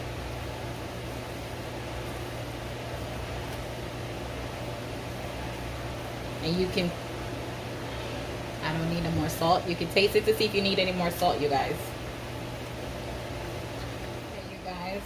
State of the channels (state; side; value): identical; both; correlation 1.00